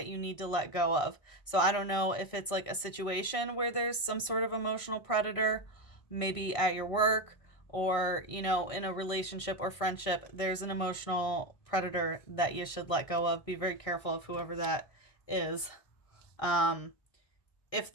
you need to let go of. So I don't know if it's like a situation where there's some sort of emotional predator, maybe at your work or, you know, in a relationship or friendship, there's an emotional predator that you should let go of. Be very careful of whoever that is. Um, if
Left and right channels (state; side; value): late; right; 1.6 ms